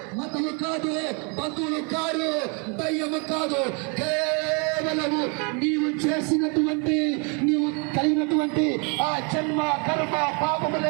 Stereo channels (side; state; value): left; quieter; 34.9 dB